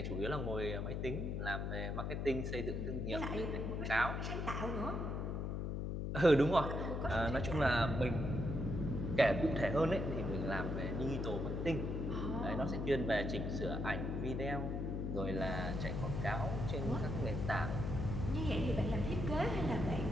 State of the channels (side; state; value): left; noise; hum, 2 dB below the sound